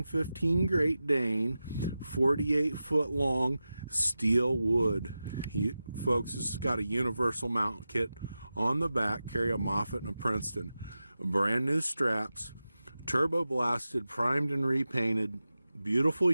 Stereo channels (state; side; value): inverted; both; correlation -0.93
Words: Great Dane 48-foot long steel wood. Folks, this has got a universal mount kit on the back, carry a Moffett and a Princeton. Brand new straps, turbo blasted, primed and repainted. Beautiful